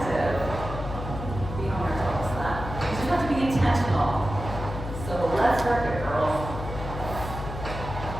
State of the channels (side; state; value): left; noise; hum, 7 dB below the sound